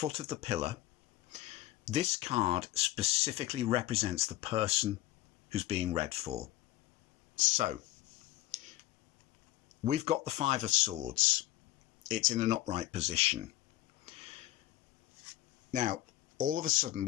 of the pillar. This card specifically represents the person who's being read for. So we've got the 5 of Swords. It's in an upright position. Now, all of a sudden,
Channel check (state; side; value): quieter; right; 15.2 dB